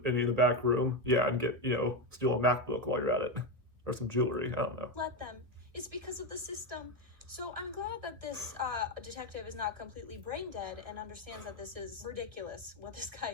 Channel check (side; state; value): left; late; 1.7 ms